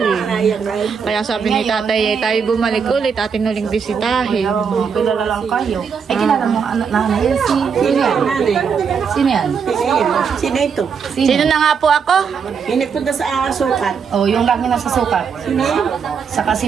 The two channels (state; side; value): quieter; left; 6.3 dB